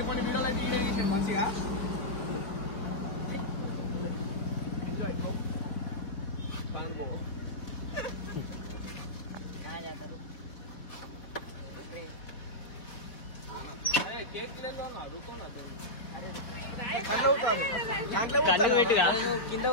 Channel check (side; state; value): right; late; 4.5 ms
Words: వీడియోలు అయితే వీడియో చేసాడు మంచిగా. ఎంజాయ్. అరే కేక్